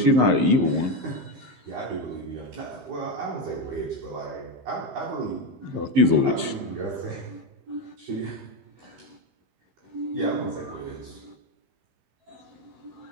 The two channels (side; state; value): left; late; 15 ms